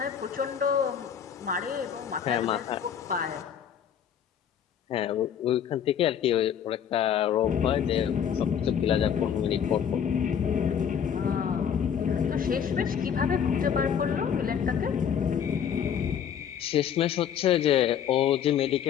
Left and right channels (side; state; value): right; quieter; 8.4 dB